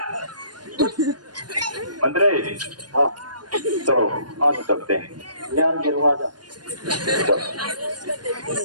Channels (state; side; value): late; left; 0.70 ms